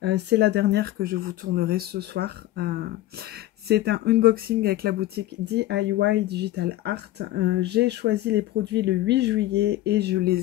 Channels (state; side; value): quieter; right; 15.3 dB